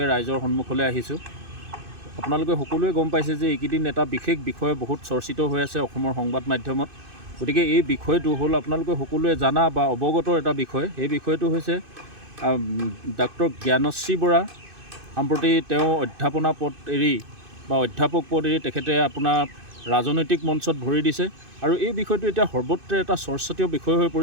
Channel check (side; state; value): left; late; 2.5 ms